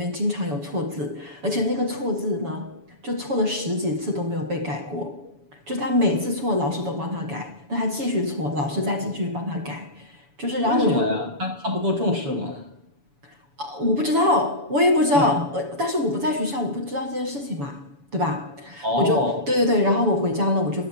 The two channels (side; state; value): left; late; 7.0 ms